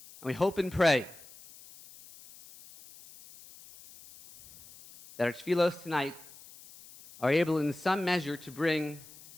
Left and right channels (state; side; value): noise; left; hiss, 20 dB below the sound